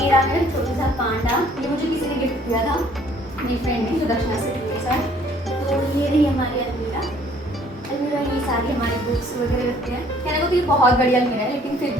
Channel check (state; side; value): normal; both; correlation 0.59